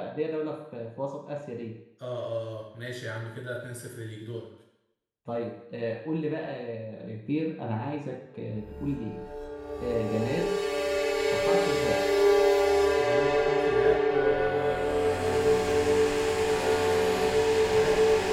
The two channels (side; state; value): both; identical; correlation 1.00